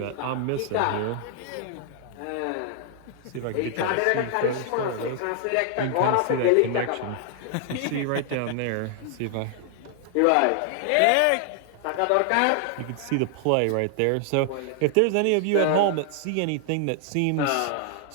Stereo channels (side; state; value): both; different; correlation 0.00